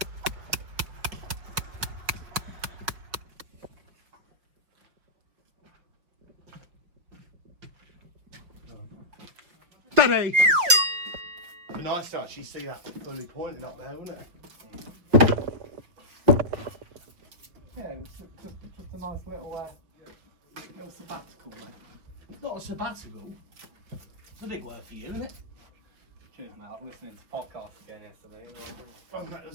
Daddy! Be nice to actually see that fully pointing up there, wouldn't it? Yeah, it's just a nice little sabbatical, mate. Not a sabbatical. It's a big word for you, isn't it? Cheers, mate. I was listening to podcasts again yesterday. Oh, that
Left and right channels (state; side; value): late; left; 5.6 ms